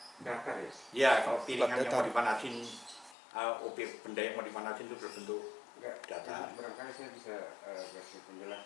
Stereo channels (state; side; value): drops out; right; at 3.2 s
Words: datar ya. Ya kalau piringan yang datar. mau dipanasin, objek benda yang mau dipanasin itu berbentuk Enggak, datar. jadi barangkali saya bisa kasih